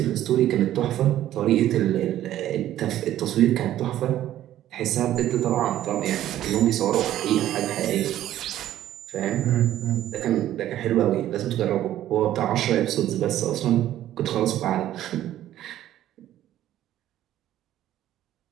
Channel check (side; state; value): left; quieter; 12.8 dB